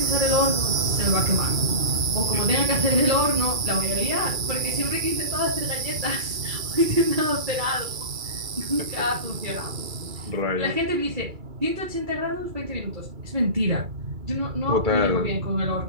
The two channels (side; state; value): left; late; 2.3 ms